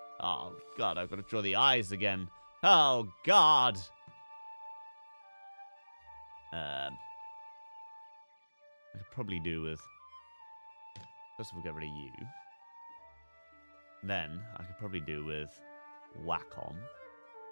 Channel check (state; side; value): inverted; both; correlation -1.00